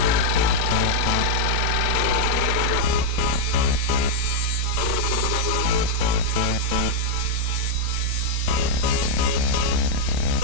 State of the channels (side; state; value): both; different; correlation -0.01